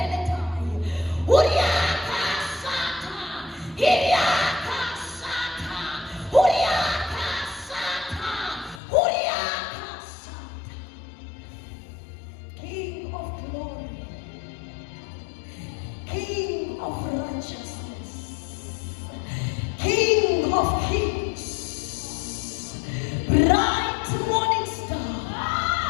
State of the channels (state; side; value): drops out; right; at 8.8 s